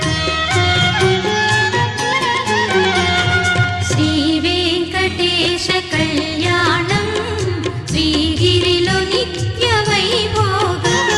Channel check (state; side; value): identical; both; correlation 1.00